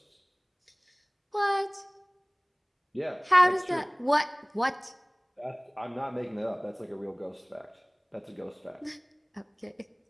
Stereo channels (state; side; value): identical; both; correlation 1.00